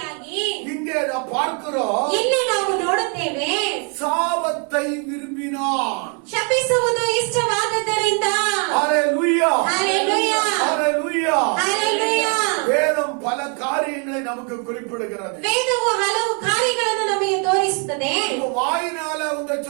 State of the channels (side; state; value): left; quieter; 38.0 dB